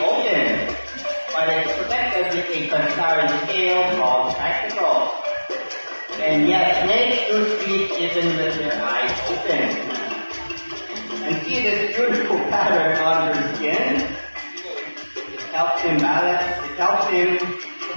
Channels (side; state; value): both; inverted; correlation -1.00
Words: open, but it's protected with a transparent scale called spectacle. And yet snakes do sleep even with their eyes open. And see this beautiful pattern on their skin? Helps him balance, it helps him